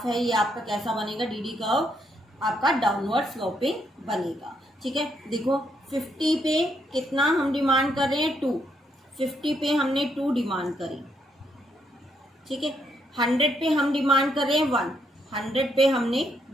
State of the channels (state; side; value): normal; both; correlation 0.75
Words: है ये आपका कैसा बनेगा, डीडी कर्व आपका डाउनवर्ड स्लोपिंग बनेगा, ठीक है। देखो 50 पे कितना हम डिमांड कर रहे हैं, 2। 50 पे हमने 2 डिमांड करी, ठीक है। 100 पे हम डिमांड कर रहे हैं 1, 100 पे हमने